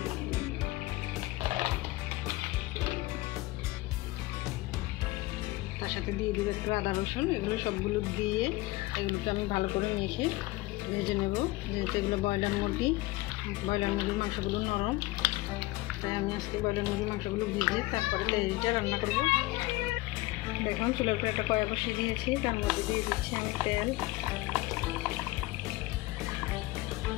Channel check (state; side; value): quieter; right; 19.9 dB